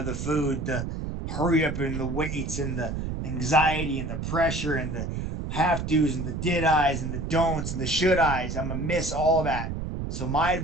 the food, the hurry up in the weights, and the anxiety and the pressure and the have to's and the did I's and the don'ts and the should I's. I'm gonna miss all that. So my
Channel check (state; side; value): noise; right; rumble, 5 dB below the sound